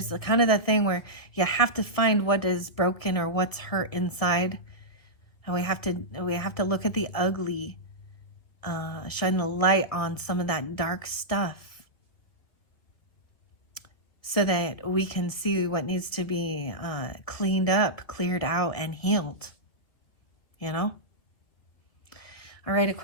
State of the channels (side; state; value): right; late; 2.0 ms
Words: kind of that thing where you have to find what is broken or what's hurt inside, and we have to look at the ugly, shine the light on some of that dark stuff so that we can see what needs to be cleaned up, cleared out, and healed, you know? All right,